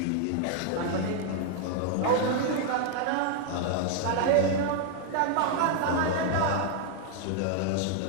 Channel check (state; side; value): different; both; correlation 0.00